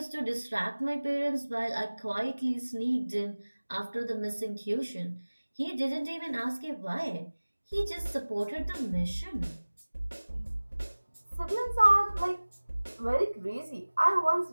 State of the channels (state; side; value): inverted; both; correlation -1.00